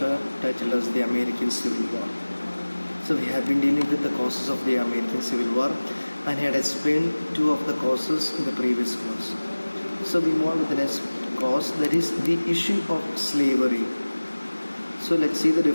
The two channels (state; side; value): inverted; both; correlation -1.00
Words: titled as the American Civil War. So we have been dealing with the causes of the American Civil War and had explained two of the causes in the previous class. So we move on with the next cause, that is the issue of slavery. So let's see the